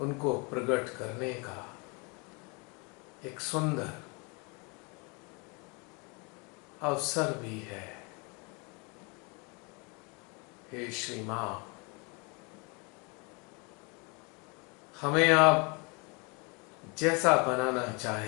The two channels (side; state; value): right; quieter; 31.2 dB